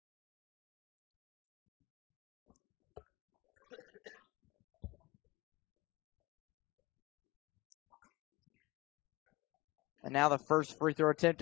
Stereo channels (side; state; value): right; quieter; 21.7 dB